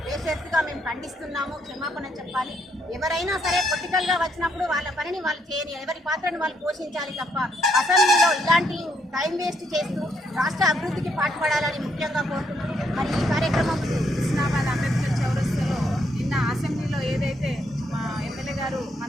బేషరతుగా మేము ఖండిస్తున్నాము, క్షమాపణ చెప్పాలి. ఎవరైనా సరే పొలిటికల్గా వచ్చినప్పుడు వాళ్ళ పనిని వాళ్ళు చేయని, ఎవరి పాత్రను వాళ్ళు పోషించాలి తప్ప అసెంబ్లీలో ఇలాంటి టైం వేస్ట్ చేస్తూ రాష్ట్ర అభివృద్ధికి పాటుపడాలని ముఖ్యంగా కోరుతున్నాం. మరి ఈ కార్యక్రమం హుస్నాబాద్ అంబేద్కర్ చౌరస్తాలో నిన్న అసెంబ్లీలో ఏదైతే మా ఎమ్మెల్యే గారు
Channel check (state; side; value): normal; both; correlation 0.73